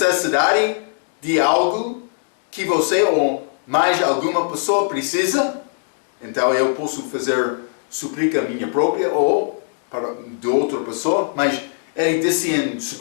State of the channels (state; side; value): silent; right; digital silence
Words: de algo que você ou mais alguma pessoa precisa. Então eu posso fazer súplica minha própria ou para de outra pessoa, mas ele disse em